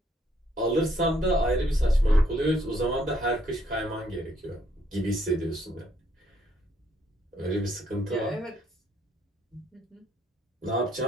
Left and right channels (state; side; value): normal; both; correlation 0.69